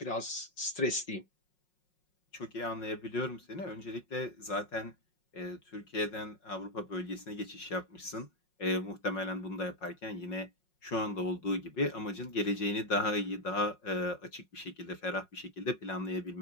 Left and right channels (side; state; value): right; late; 5.5 ms